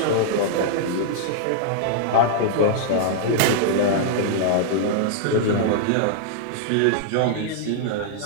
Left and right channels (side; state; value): both; different; correlation -0.01